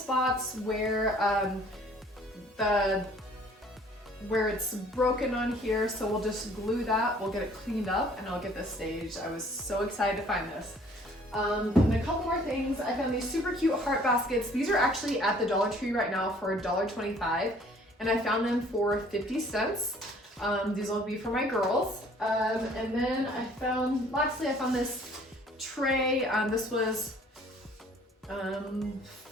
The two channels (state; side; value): normal; both; correlation 0.56